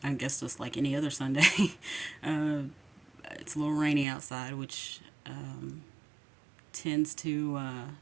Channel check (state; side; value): drops out; left; at 4.0 s